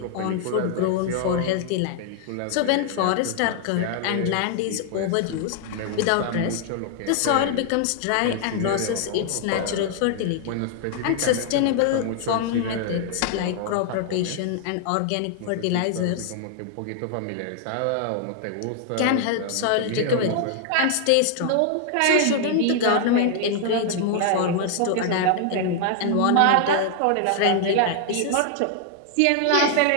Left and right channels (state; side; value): different; both; correlation 0.00